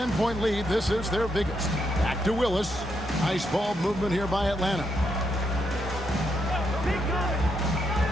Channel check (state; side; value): normal; both; correlation 0.79